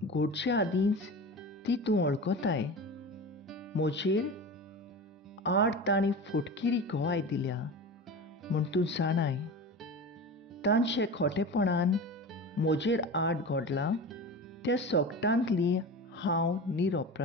घोडचे आदींच ती तूं वळखताय. म्हजेर आड तांणी फटकिरी घोवाय दिल्या म्हूण तूं जाणाय. तांचे खोटेपणान म्हजेर आड घडलां त्या सोगटांतली हांव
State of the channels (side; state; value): both; normal; correlation 0.30